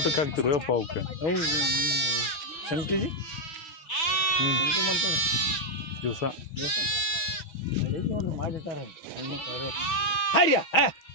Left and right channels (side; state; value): right; late; 6.1 ms